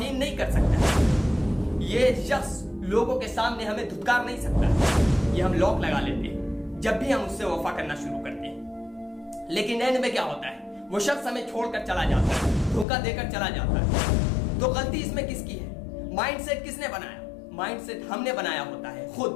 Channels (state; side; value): drops out; right; at 12.9 s